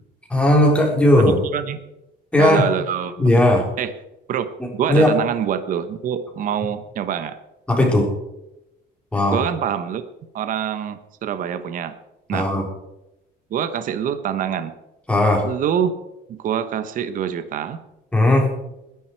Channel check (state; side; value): normal; both; correlation 0.57